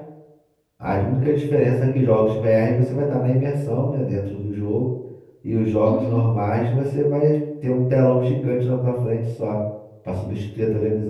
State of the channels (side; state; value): both; identical; correlation 1.00